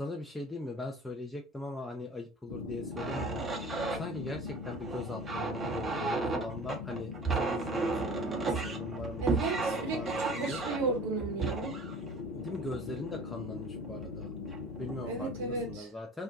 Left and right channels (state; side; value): normal; both; correlation 0.43